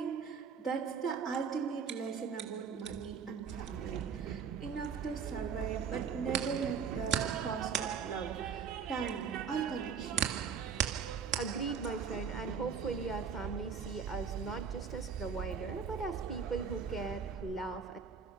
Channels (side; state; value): left; quieter; 6.3 dB